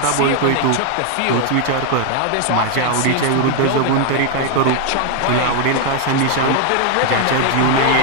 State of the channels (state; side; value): different; both; correlation 0.01